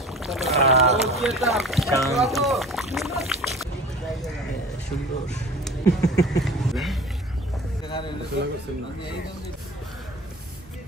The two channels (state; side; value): normal; both; correlation 0.40